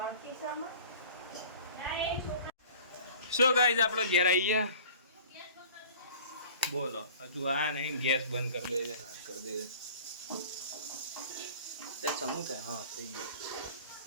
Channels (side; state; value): both; inverted; correlation -0.45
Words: શું ગાઈસ, આપણો ઘેર આવી ગયા. બોલો હજુ આ નહીં, ગેસ બંધ કરી દે સમૂહ થાય. હા થઈ ગયું,